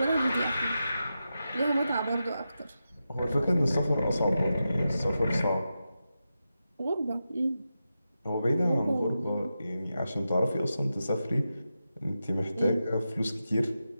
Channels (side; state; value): both; inverted; correlation -0.90